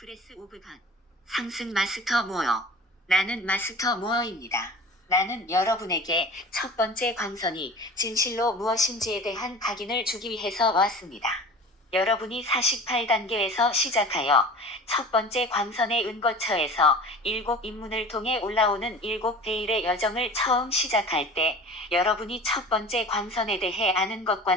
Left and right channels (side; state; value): both; normal; correlation 0.39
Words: 오브 갓. 상승 마스터 모어. 나는 마스터 모어입니다. 나는 여러분에게 첫 번째 광선이 진실로 무엇인지에 대한 각인을 주기 위해서 왔습니다. 여러분이 48단계에서 시작하여 첫 번째 광선의 은거처에서 7입문을 통해 올라오는 7베일의 여정을 처음 시작할 때 여러분이 첫 번째 광선에 대해 아는